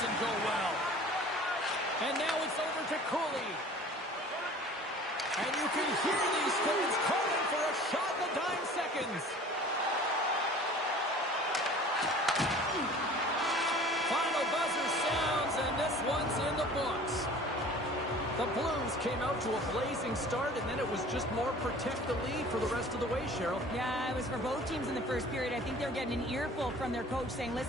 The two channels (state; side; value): normal; both; correlation 0.46